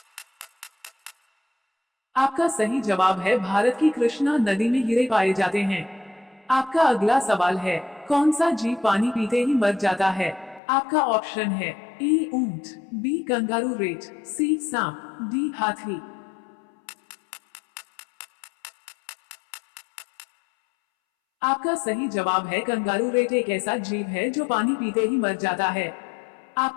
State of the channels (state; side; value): drops out; right; at 10.6 s